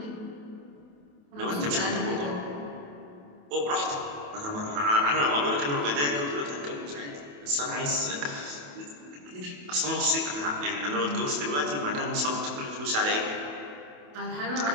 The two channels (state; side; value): late; left; 28 ms